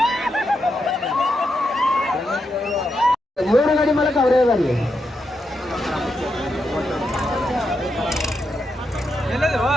ಮೂರು ಗಾಡಿ ಮೂಲಕ ಅವರೇ ಬರಲಿ.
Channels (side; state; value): both; normal; correlation 0.84